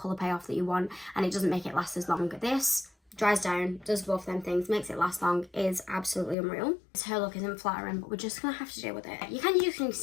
payoff that you want, and it doesn't make it last as long. This dries down, does both them things, makes it last long, is absolutely unreal. This hair look isn't flattering, but we're just gonna have to deal with it. You can use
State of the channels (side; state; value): right; drops out; at 6.4 s